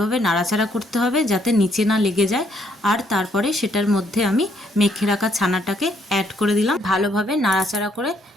নাড়াচাড়া করতে হবে যাতে নিচে না লেগে যায়। আর তারপরে সেটার মধ্যে আমি মেখে রাখা ছানাটাকে অ্যাড করে দিলাম, ভালোভাবে নাড়াচাড়া করে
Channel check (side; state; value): both; normal; correlation 0.70